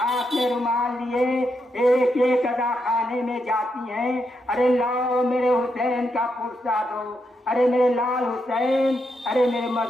میں رومال لیے ایک ایک ادا خانے میں جاتی ہیں، ارے لاؤ میرے حسین کا پرسہ دو، ارے میرے لال حسین، ارے میرے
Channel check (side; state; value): both; normal; correlation 0.82